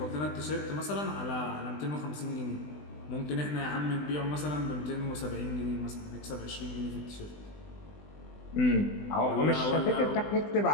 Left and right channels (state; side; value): late; right; 20 ms